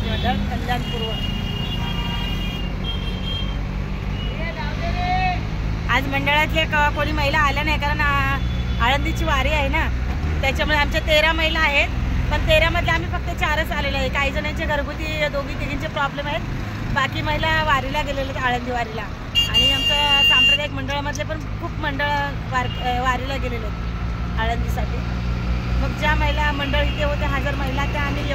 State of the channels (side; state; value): both; identical; correlation 1.00